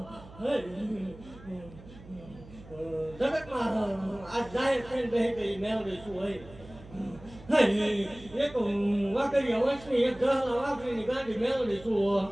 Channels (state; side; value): noise; right; hum, 19 dB below the sound